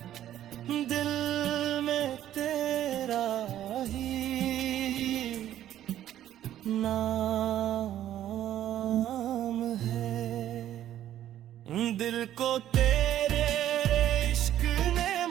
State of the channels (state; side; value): quieter; left; 11.9 dB